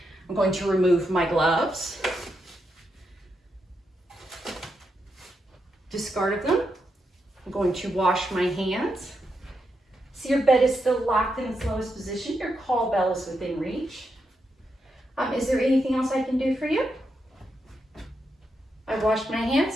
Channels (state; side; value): normal; both; correlation 0.84